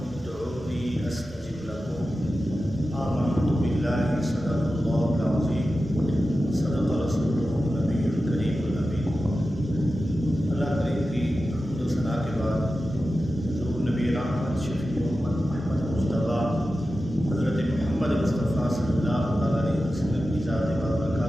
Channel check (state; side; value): normal; both; correlation 0.93